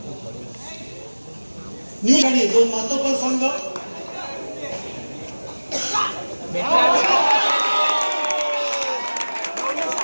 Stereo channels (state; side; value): inverted; both; correlation -1.00